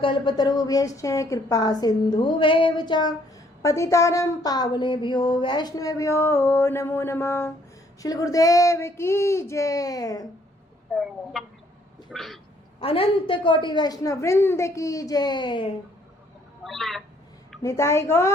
कृपा सिन्धुभ्येव च पतितानां पावनेभ्यो वैष्णवेभ्यो नमो नमः। श्री गुरुदेव की जय। अनंत कोटि वैष्णव वृंद की जय। निताई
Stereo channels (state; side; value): normal; both; correlation 0.65